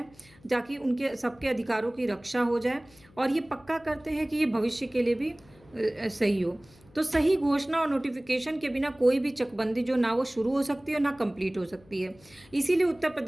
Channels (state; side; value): noise; left; hum, 27 dB below the sound